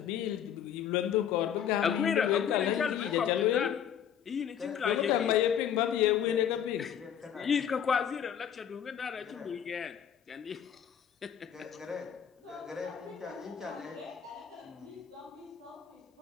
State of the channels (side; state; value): right; quieter; 9.0 dB